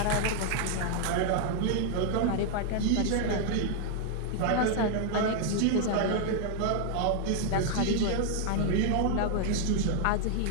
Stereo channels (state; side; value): different; both; correlation 0.00